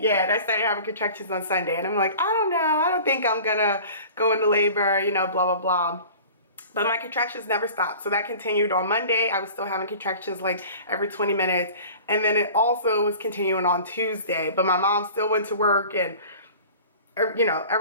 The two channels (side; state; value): both; inverted; correlation -0.42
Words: yeah. And I started having contractions on Sunday. And I'm like, I don't know. I don't think I'm going to go into labor, you know, blah, blah, blah. But my contractions never stopped. So that continued on Monday. I was still having contractions like every 20 minutes. And then it also was continuing on Tuesday. But my mom still went to work and, you know,